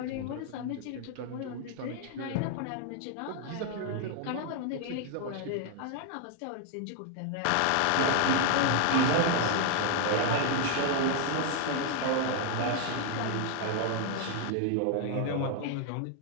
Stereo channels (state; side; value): different; both; correlation 0.00